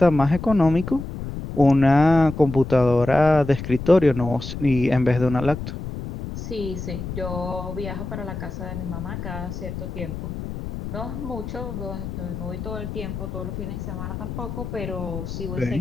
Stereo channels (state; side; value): noise; left; rumble, 7 dB below the sound